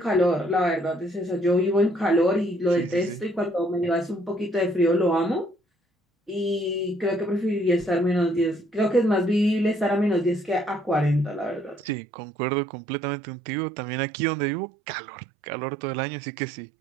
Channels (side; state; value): left; drops out; at 12.0 s